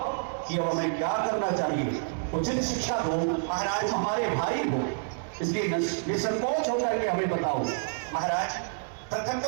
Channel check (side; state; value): left; silent; 59 dB below the other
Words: कि अब हमें क्या करना चाहिए। उचित शिक्षा दो महाराज, हमारे भाई हो, इसलिए निसंकोच होकर के हमें बताओ। महाराज, प्रथम